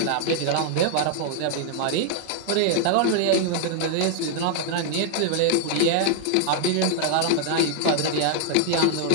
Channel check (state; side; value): different; both; correlation 0.00